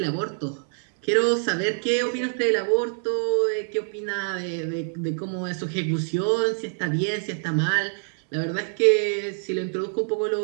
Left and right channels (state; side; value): silent; left; digital silence